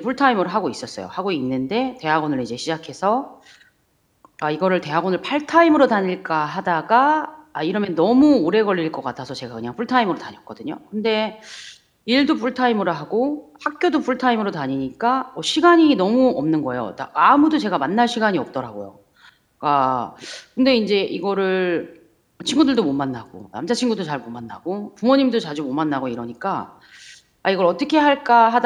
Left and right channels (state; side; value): identical; both; correlation 1.00